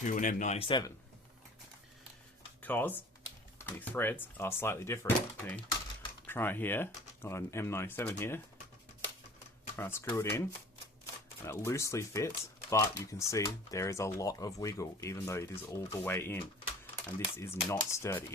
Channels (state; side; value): normal; both; correlation 0.46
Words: an M97, because the threads are slightly different. Okay, try it here, got an M97 here, try to screw it in, and it loosely fits, but you can see there is a lot of wiggle even though it is all the way in, and this is not sturdy,